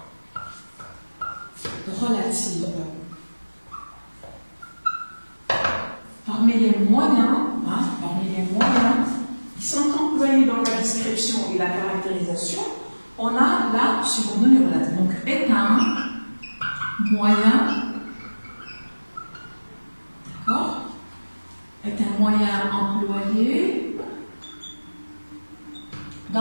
relative. Parmi les moyens qui sont employés dans la description et la caractérisation, on a la subordonnée relative. Donc, est un moyen, d'accord, est un moyen employé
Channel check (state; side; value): inverted; both; correlation -1.00